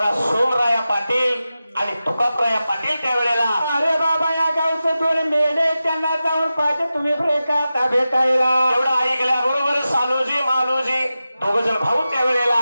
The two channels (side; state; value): both; inverted; correlation -0.93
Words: सोमराया पाटील आणि तुकापराया पाटील त्यावेळेला. अरे बाबा या गावचे दोन मेढे त्यांना जाऊन पाहिजे तुम्ही का भेटायला. एवढं ऐकल्या बरोबर सालूजी मालूजी दोघ जण भाऊ त्यावेळेला.